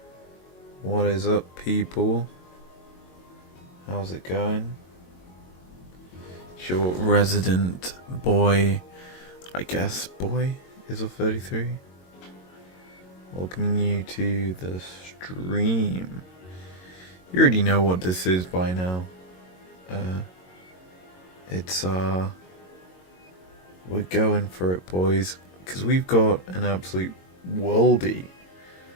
What is up, people? How's it going? It's your resident boy, I guess boy, izlogic.business. Welcoming you to the stream. You already know what this is by now. We're going for it, boys, because we've got an absolute worldie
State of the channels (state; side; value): late; right; 22 ms